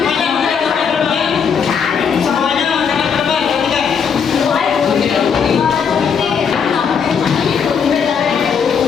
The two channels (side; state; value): right; quieter; 6.7 dB